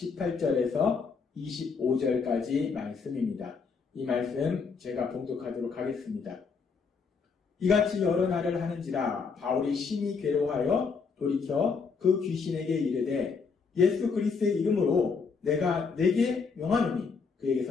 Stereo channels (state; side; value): quieter; right; 5.2 dB